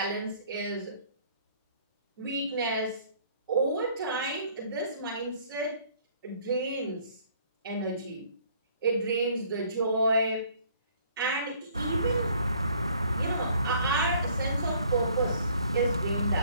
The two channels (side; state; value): both; inverted; correlation -0.59